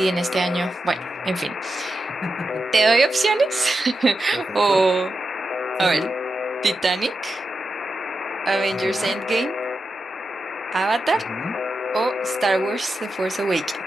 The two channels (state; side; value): normal; both; correlation 0.89